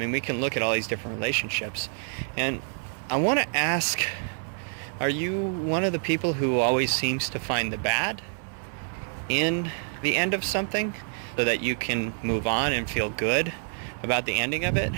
we can look at all these different relationships. And I want to ask, are you one of the people who always seems to find the bad in the end of something so that you can move on and feel good about the ending of it?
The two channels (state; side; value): silent; left; 60 dB below the other